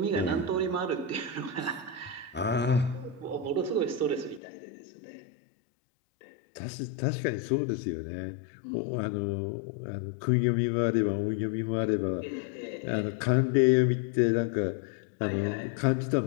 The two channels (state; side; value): drops out; right; at 4.4 s